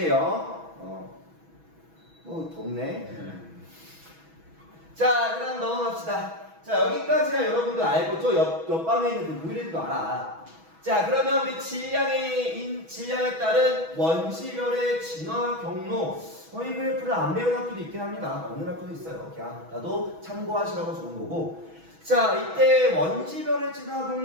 뭐, 덥네. 자, 그다음 넘어갑시다. 자, 여기까지가 여러분들 알고 저 옆방에 있는 그 보이레드도 알아. 자, 그러면 우리 질량에 따른 원시별의 진화 경로. 이 그래프를 안 배운 학교도 있긴 합니다. 어느 학교도 있어요. 그냥 나도 참고하시라고 좋은 거고. 자, 이때 원시별의 진화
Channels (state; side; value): late; left; 6.1 ms